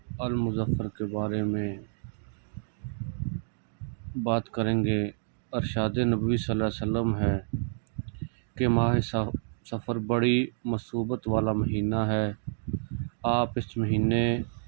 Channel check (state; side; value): silent; left; digital silence